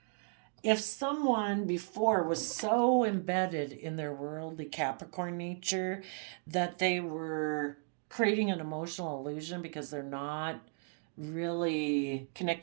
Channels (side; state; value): left; silent; 55 dB below the other